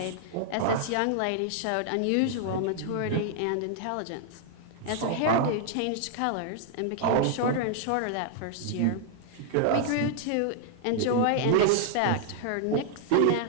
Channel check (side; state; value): both; different; correlation -0.01